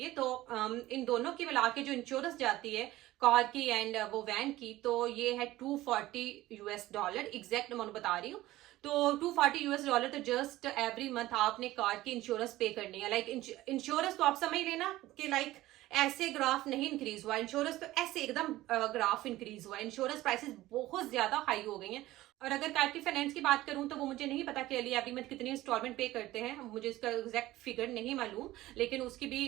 तो इन दोनों की मिला के जो इंश्योरेंस जाती है कार की एंड वो वैन की, तो ये है $240 यूएस डॉलर। एग्जैक्ट अमाउंट बता रही हूँ। तो $240 यूएस डॉलर तो जस्ट एवरी मंथ आपने कार की इंश्योरेंस पे करनी है। लाइक इंश्योरेंस तो आप समझ लेना कि लाइक ऐसे ग्राफ नहीं इंक्रीज हुआ, इंश्योरेंस तो ऐसे एकदम ग्राफ इंक्रीज हुआ। इंश्योरेंस प्राइसेस बहुत ज्यादा हाई हो गई हैं। और अगर कार की फाइनेंस की बात करूं तो वो मुझे नहीं पता कि अली एवरी मंथ कितनी इंस्टॉलमेंट पे करते हैं, मुझे इसका एग्जैक्ट फिगर नहीं मालूम। लेकिन उसकी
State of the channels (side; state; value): left; quieter; 16.5 dB